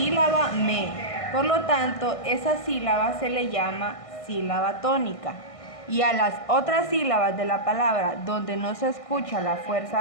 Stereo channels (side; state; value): right; late; 1.6 ms